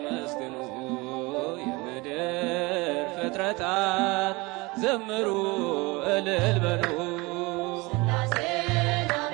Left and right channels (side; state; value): left; quieter; 24.4 dB